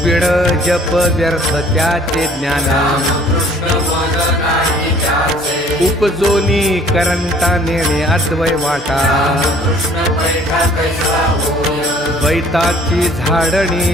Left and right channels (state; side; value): normal; both; correlation 0.55